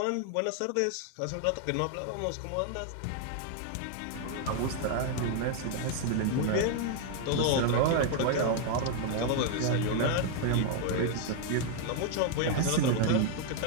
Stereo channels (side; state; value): both; different; correlation 0.00